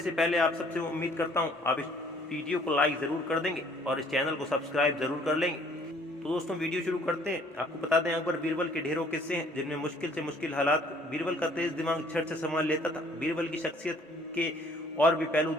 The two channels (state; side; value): normal; both; correlation 0.58